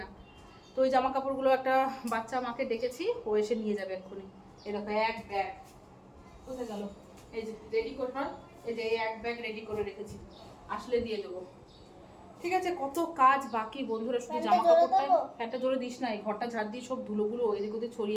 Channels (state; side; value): identical; both; correlation 1.00